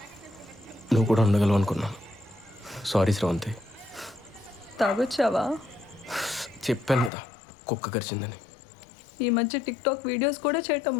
నువ్వు కూడా ఉండగలవు అనుకున్నాను. సారీ శ్రవంతి. తాగొచ్చావా? చెప్పాను కదా కుక్క కరిచిందని. ఈ మధ్య టిక్టాక్ వీడియోస్ కూడా చేయటం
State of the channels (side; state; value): right; drops out; at 7.1 s